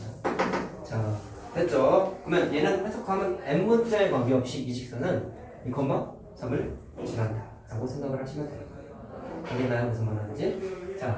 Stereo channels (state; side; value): identical; both; correlation 1.00